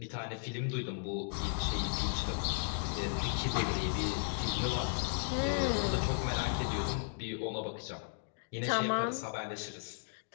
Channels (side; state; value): right; silent; digital silence